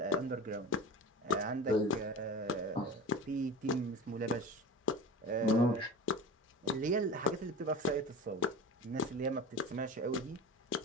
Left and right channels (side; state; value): both; normal; correlation 0.33